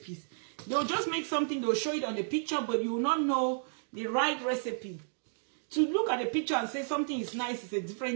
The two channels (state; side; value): silent; left; digital silence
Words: They'll just make something, they'll show it on the picture, but you will not know the right recipe. To look at the picture and say something is nice is a